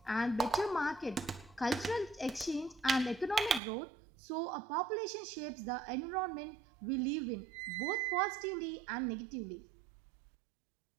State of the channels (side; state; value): left; drops out; at 3.6 s